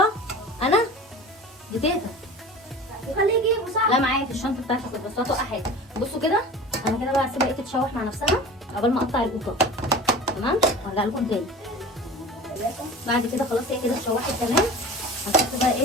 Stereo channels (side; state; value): both; normal; correlation 0.37